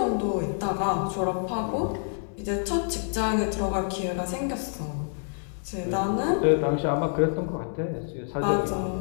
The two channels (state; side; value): silent; right; 60 dB below the other